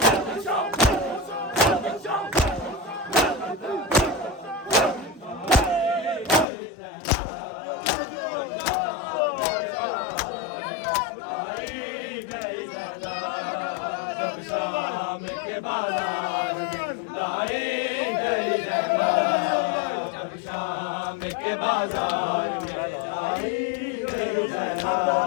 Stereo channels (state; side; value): drops out; right; at 6.5 s